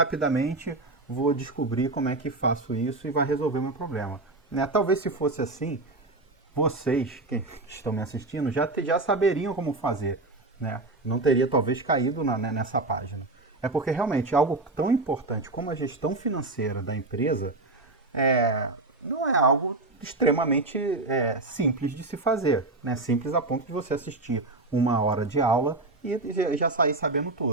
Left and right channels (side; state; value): left; quieter; 3.1 dB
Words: vou descobrir como é que faço isso e vai resolver o meu problema. Né? Talvez se fosse assim, vocês que estão me assistindo já saberiam como fazer. Né? Não teria talvez caído nessa página. É porque realmente algo tão importante como a gestão financeira da empresa não é algo extremamente simples de se fazer. Né? Simples a ponto de você assistir 1 hora de aula e já sair sabendo